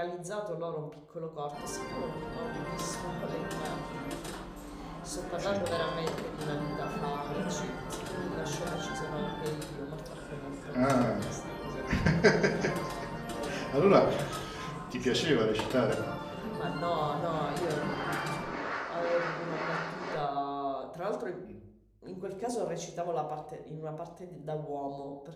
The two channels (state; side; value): identical; both; correlation 1.00